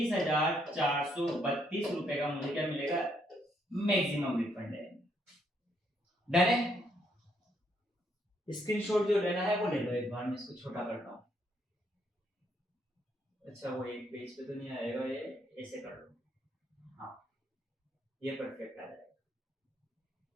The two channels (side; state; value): both; normal; correlation 0.73